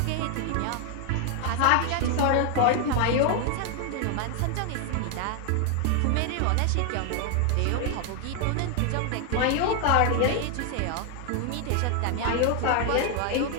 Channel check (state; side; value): different; both; correlation 0.00